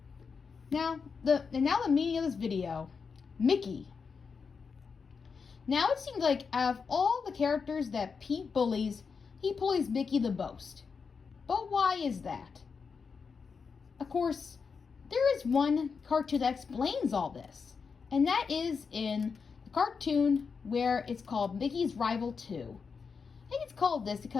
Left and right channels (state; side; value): quieter; right; 5.5 dB